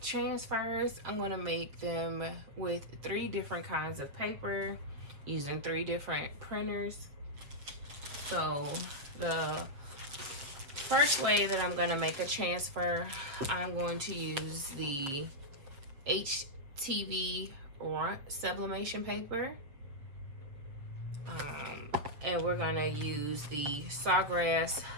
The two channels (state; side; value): late; left; 7.5 ms